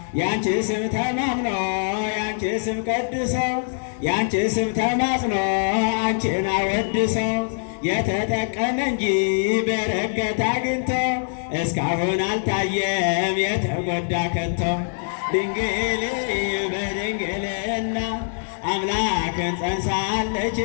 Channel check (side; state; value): right; silent; digital silence